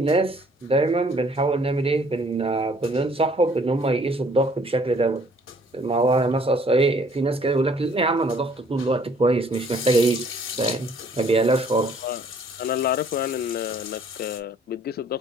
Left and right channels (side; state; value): both; normal; correlation 0.59